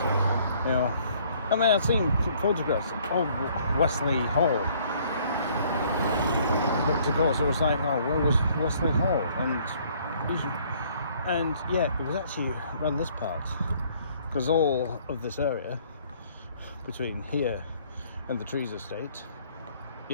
You know, I mean, I've seen photographs of Westleigh Hall, but of course it was like, oh, where was Westleigh Hall? And yeah, it was actually around this part, because all of this area between here and the Trees Estate,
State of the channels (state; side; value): inverted; both; correlation -0.61